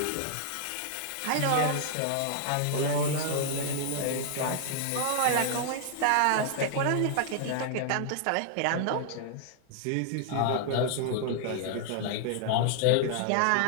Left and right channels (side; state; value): both; different; correlation -0.01